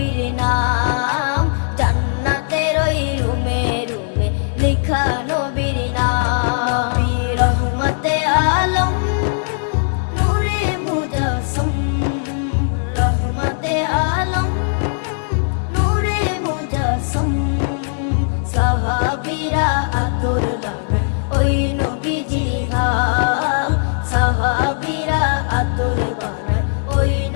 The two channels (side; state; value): right; silent; digital silence